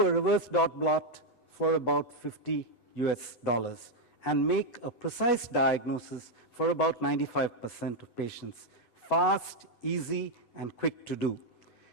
a reverse dot blot for about $50 and make a precise diagnosis for about 95% of patients. Fast, easy, and quick to do.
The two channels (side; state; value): right; late; 11 ms